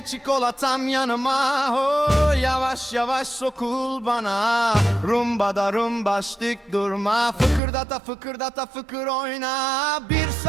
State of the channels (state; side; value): drops out; left; at 7.6 s